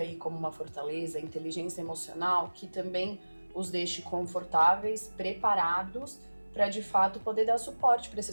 aí como uma fortaleza, inteligência emocional, que também os deixe confortáveis, preparados para de fato poder dar suporte para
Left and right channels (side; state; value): both; inverted; correlation -1.00